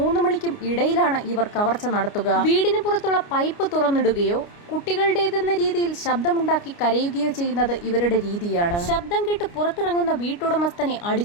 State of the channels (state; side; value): late; right; 29 ms